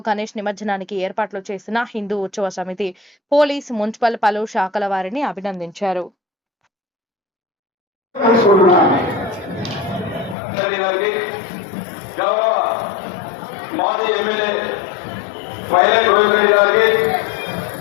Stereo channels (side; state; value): right; drops out; at 10.4 s